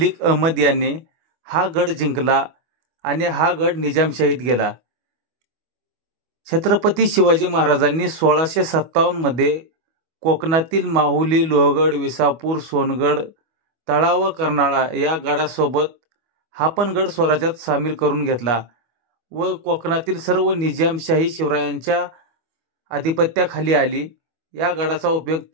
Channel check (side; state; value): left; late; 25 ms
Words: अहमद याने हा गड जिंकला आणि हा गड निजामशाहीत गेला. छत्रपती शिवाजी महाराजांनी 1657 मध्ये कोकणातील माहुली, लोहगड, विसापूर, सोनगड, तळा व कर्नाळा या गडासोबत हा पण गड स्वराज्यात सामील करून घेतला व कोकणातील सर्व निजामशाही शिवरायांच्या आधिपत्याखाली आली. या गडाचा उपयोग